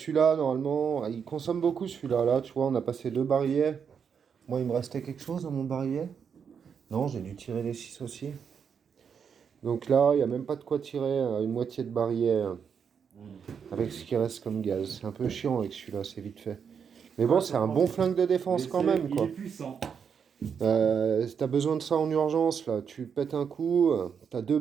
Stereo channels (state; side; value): quieter; left; 6.9 dB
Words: normalement, il consomme beaucoup celui-là. Là, tu vois, on a passé 2 barillets. Moi, il me restait quelque chose dans mon barillet. Non, j'ai dû tirer les 6 aussi. Donc là, il n'y a même pas de quoi tirer une moitié de barillet avec ce qui reste comme gaz. C'est un peu chiant avec celui-là, c'est vite fait. Mais bon, c'est un bon flingue de défense Mais quand c'est- même, Il quoi. est puissant. Si t'as besoin de ça en urgence, là, tu pètes un coup, t'as 2